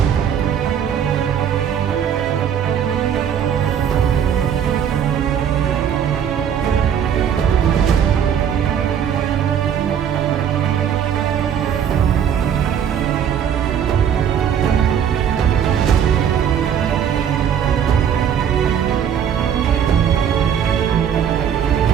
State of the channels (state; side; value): quieter; left; 8.6 dB